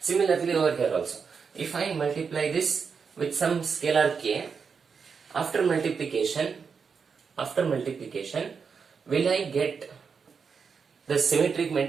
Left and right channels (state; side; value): quieter; left; 5.8 dB